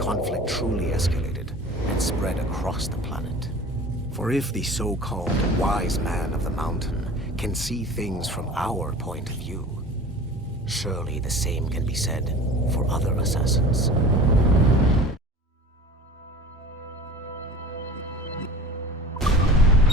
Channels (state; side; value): normal; both; correlation 0.39